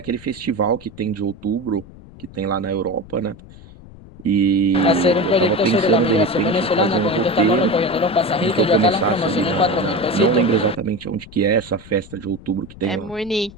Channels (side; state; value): left; noise; rumble, 19 dB below the sound